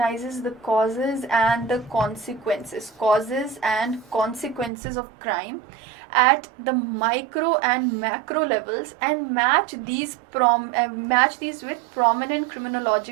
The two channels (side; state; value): left; drops out; at 4.7 s